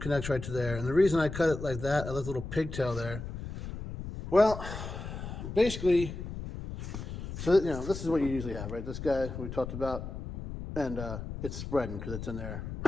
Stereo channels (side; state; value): left; noise; rumble, 8 dB below the sound